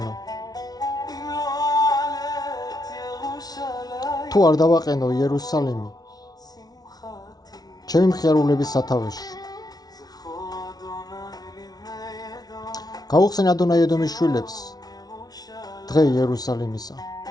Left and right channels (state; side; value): late; right; 0.19 ms